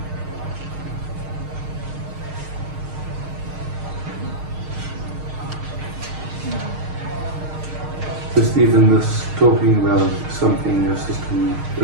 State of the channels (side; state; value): left; late; 6.5 ms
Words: Just even this talking about something your system